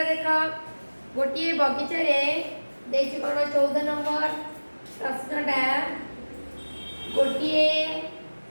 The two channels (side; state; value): both; inverted; correlation -1.00